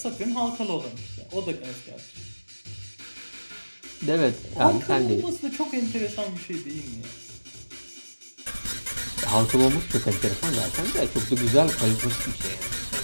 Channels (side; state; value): both; inverted; correlation -1.00